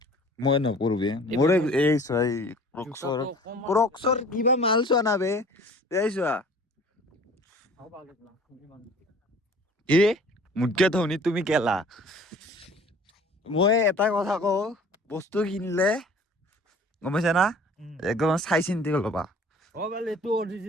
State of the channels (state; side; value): normal; both; correlation 0.48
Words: মই নপৰো বে মোৰ এই চাই ক্ৰক্সৰ কিবা মাল চোৱা না বে এই চোৱা এ মোতকে ধনী তুমি কেলা মই এটা কথা কওঁ বস্তু কিনিলে গম পাইছা না একদম চাই চিন্তি ল'বা বোলে এইটো